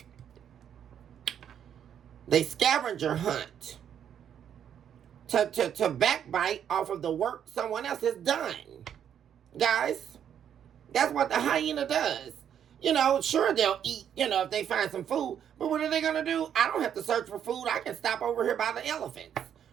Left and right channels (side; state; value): left; quieter; 9.1 dB